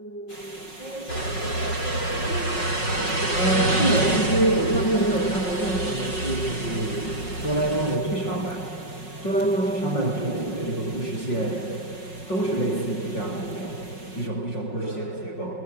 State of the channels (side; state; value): right; late; 5.4 ms